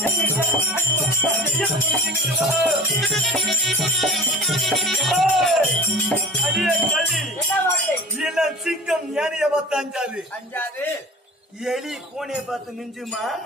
சிங்கம் யானைய பார்த்து அஞ்சாது அஞ்சாது எலி பூனைய பார்த்து மிஞ்சுமா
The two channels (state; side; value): normal; both; correlation 0.39